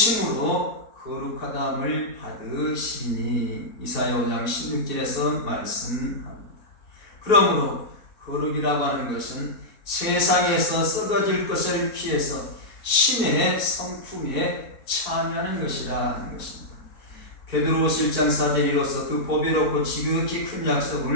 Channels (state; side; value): late; right; 4.6 ms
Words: 거룩하다함을 받으시니 이사야 5장 16절에서 말씀합니다. 그러므로 거룩이라고 하는 것은 세상에서 썩어질 것을 피해서 신의 성품에 참여하는 것이라 하는 것입니다. 베드로후서 1장 4절 이로써 그 보배롭고 지극히 큰